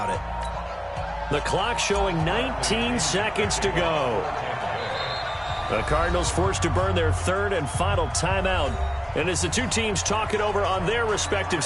it. The clock showing 19 seconds to go. The Cardinals forced to burn their third and final timeout. And as the two teams talk it over on their respective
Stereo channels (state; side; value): identical; both; correlation 1.00